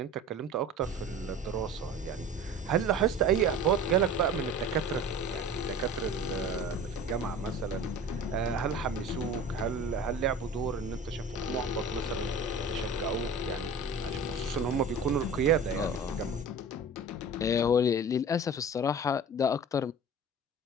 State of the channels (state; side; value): normal; both; correlation 0.39